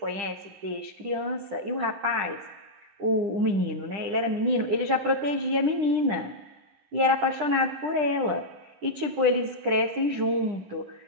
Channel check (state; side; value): late; left; 10 ms